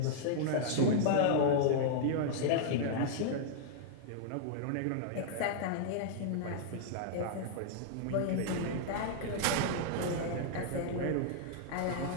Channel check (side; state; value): both; different; correlation -0.01